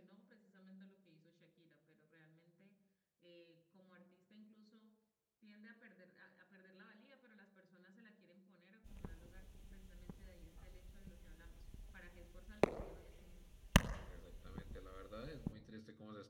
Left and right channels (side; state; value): both; identical; correlation 1.00